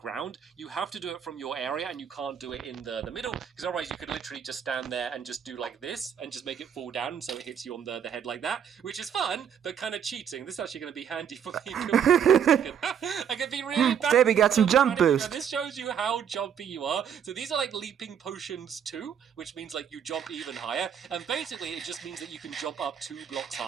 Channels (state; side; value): quieter; left; 8.2 dB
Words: you have to do it from your area, and you can't do it in the middle, because otherwise you could literally just stand there and just do like this and just make it fall down, so it hits you on the head like that, which is fun but kind of cheating. This is actually going to be handy for me. I can be really bad. Stampy got some jump boost. This shows you how jumpy you are. So these are like leaping potions too, which means like you jump even higher, and basically it just means that you can jump up 2 blocks